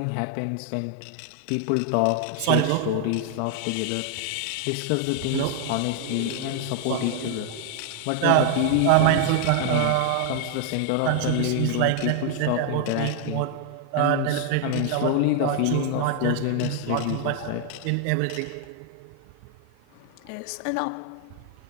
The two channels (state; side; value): different; both; correlation 0.00